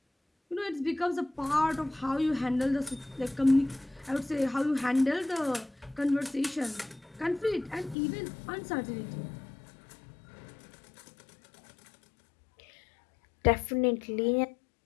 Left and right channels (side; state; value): right; drops out; at 8.0 s